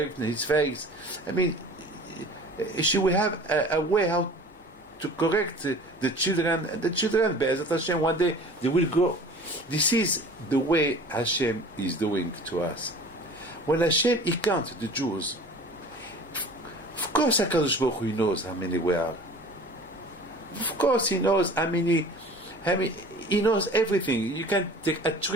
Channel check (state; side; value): normal; both; correlation 0.43